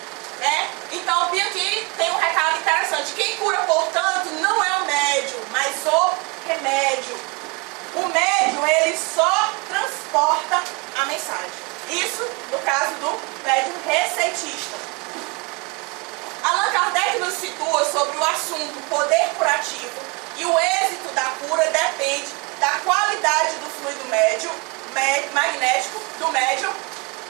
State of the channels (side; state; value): left; quieter; 28.5 dB